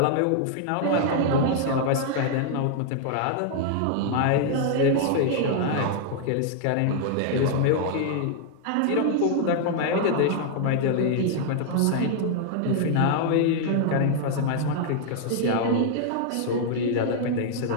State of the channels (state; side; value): different; both; correlation -0.01